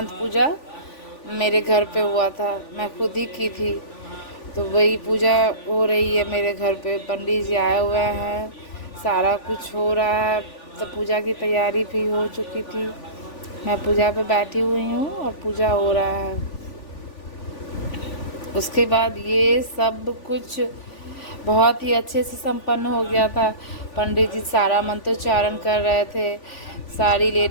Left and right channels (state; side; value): late; right; 3.5 ms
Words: पूजा मेरे घर पे हुआ था, मैं खुद ही की थी। तो वही पूजा हो रही है मेरे घर पे, पंडित जी आए हुए हैं, सारा कुछ हो रहा है। तो पूजा की तैयारी भी हो चुकी थी, मैं पूजा पे बैठी हुई हूँ और पूजा हो रहा है। उसके बाद ये सब कुछ बहुत ही अच्छे से संपन्न हो गया था। पंडित जी सारा मंत्रोच्चारण कर रहे थे, सारी